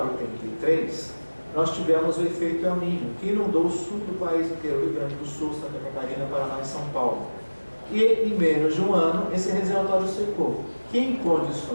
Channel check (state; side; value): inverted; both; correlation -1.00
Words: 83, nós tivemos o efeito El Niño, que inundou o sul do país inteiro, Rio Grande do Sul, Santa Catarina, Paraná e São Paulo. E em menos de um ano, esse reservatório secou, que em